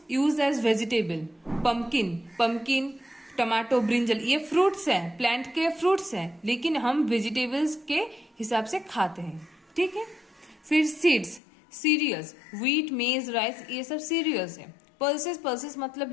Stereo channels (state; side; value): drops out; right; at 11.4 s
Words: use as vegetable, pumpkin, tomato, brinjal, ये फ्रूट्स हैं, प्लांट के फ्रूट्स हैं, लेकिन हम वेजिटेबल्स के हिसाब से खाते हैं। ठीक है। फिर सीड्स, सीरियल्स, व्हीट, मेज, राइस, ये सब सीरियल्स हैं। पल्सेस मतलब